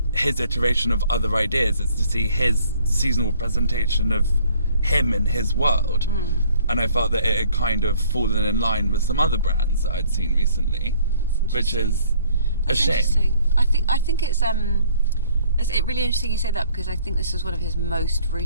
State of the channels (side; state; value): both; inverted; correlation -0.59